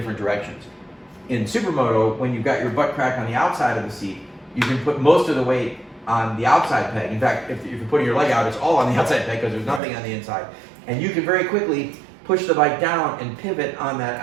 directions. In Supermoto, when you've got your butt crack on the outside of the seat, you can put most of the weight on the outside peg. In fact, if you're putting your leg out, it's all on the outside peg because there's nothing on the inside. And you can very quickly push the bike down and pivot on that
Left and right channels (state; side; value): drops out; left; at 9.8 s